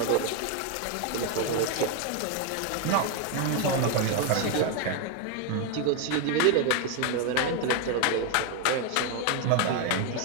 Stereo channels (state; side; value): different; both; correlation 0.01